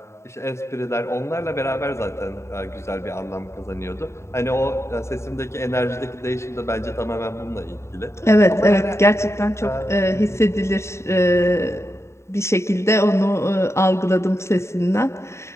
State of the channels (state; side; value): late; right; 0.13 ms